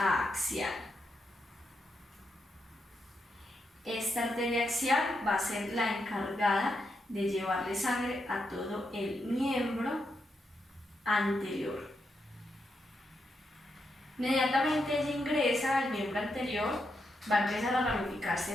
Esta arteria axial va a ser la encargada de llevarle sangre a todo el miembro anterior. Inmediatamente ella ingresa al miembro anterior, va a empezar a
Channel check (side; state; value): both; normal; correlation 0.83